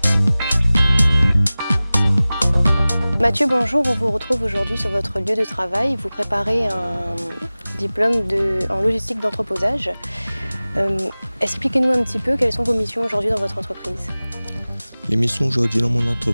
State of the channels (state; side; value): inverted; both; correlation -0.98